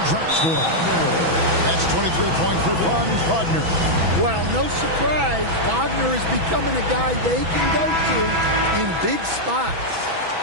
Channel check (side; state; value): left; late; 6.1 ms